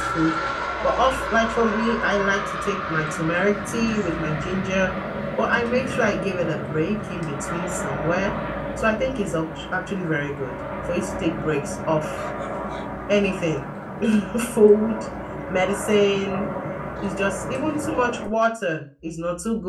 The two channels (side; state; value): both; identical; correlation 1.00